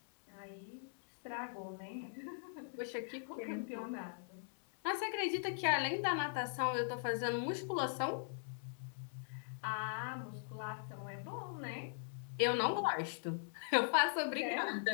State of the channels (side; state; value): right; silent; digital silence